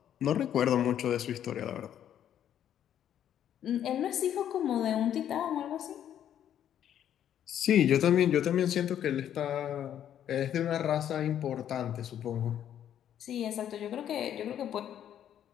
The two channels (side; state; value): right; quieter; 10.2 dB